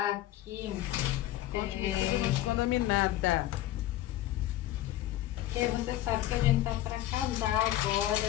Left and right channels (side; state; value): right; quieter; 14.3 dB